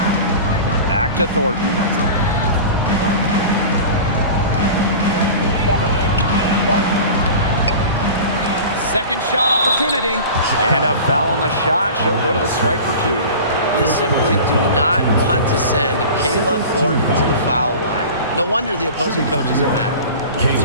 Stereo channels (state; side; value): inverted; both; correlation -0.36